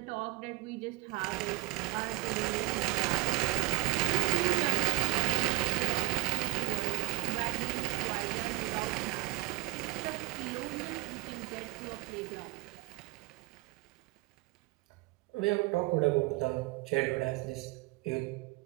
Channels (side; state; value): left; quieter; 20.0 dB